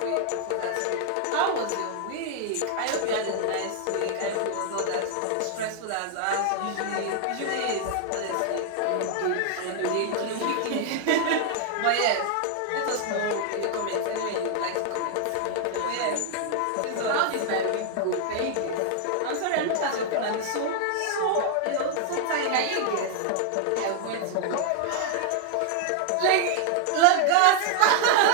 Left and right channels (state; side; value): different; both; correlation 0.00